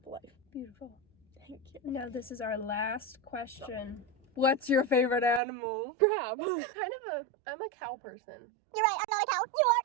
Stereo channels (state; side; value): drops out; left; at 5.4 s